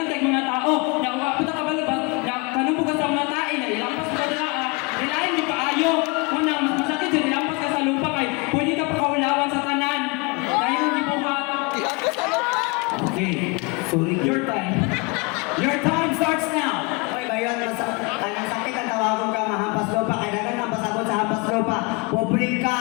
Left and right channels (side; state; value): right; quieter; 28.3 dB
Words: kay mga tao ya puta ka balo ba ya kanimo ka sa mga tae na ilampas ka dira ilain di paayo una mas masakit yung ilampas ka sa lupa kay pwede ka pakaulawan sa tanan dahil ang gibuhat. Okay, sorry, your time. Your time starts now. Oy, bayon, ang sakit ang tawagon ka mahampas lupa, kaya dagan ang pasabot sa hampas lupa. Pobre